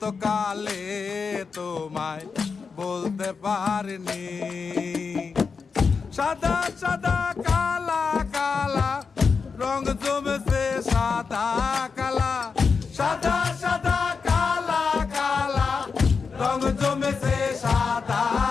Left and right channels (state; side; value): quieter; right; 5.2 dB